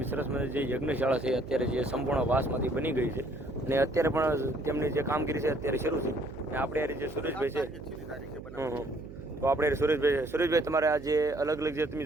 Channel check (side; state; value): right; noise; hum, 14 dB below the sound